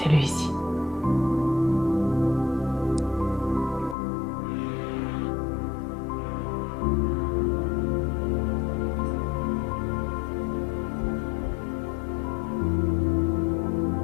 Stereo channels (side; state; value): right; drops out; at 4.0 s